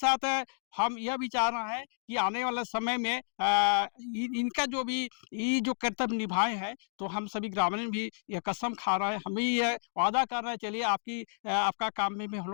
हम यह भी चाह रहे हैं कि आने वाले समय में इनका जो भी ये जो कर्तव्य निभाए हैं, तो हम सभी ग्रामीण भी यह कसम खा रहे हैं, हम भी यह वादा कर रहे हैं, चलिए आपका काम में भी हम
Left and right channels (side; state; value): right; silent; digital silence